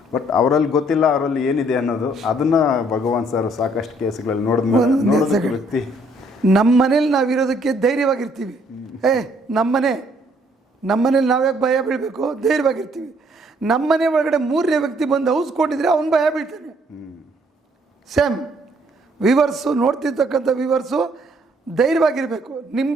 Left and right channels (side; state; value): both; normal; correlation 0.65